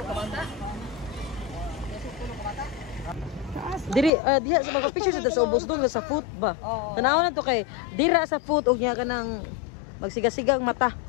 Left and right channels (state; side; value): drops out; right; at 4.1 s